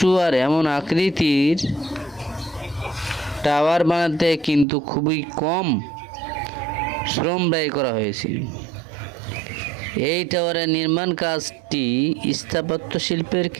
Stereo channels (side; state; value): left; drops out; at 4.7 s